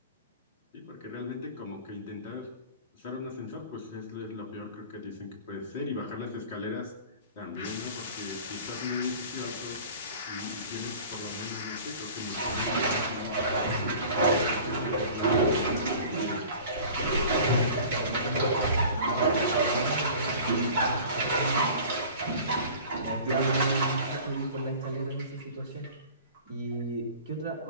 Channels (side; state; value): both; inverted; correlation -0.42